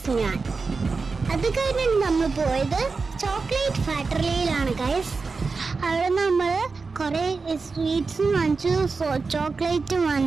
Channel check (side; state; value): left; quieter; 4.4 dB